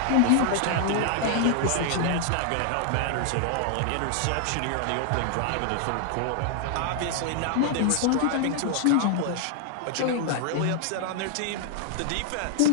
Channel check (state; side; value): different; both; correlation 0.00